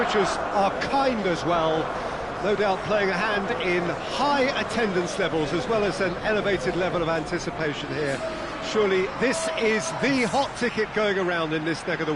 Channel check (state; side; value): identical; both; correlation 1.00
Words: are kind as well. No doubt playing a hand in high attendance levels as well as an elevated level of anticipation here. Surely this is the hot ticket going around in this neck of the